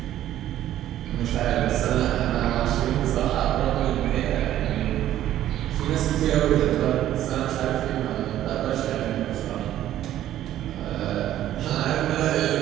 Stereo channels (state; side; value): quieter; left; 12.6 dB